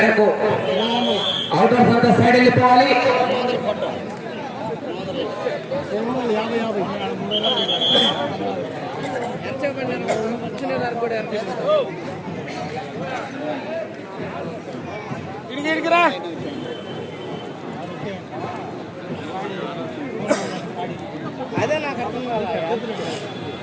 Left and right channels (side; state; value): both; identical; correlation 1.00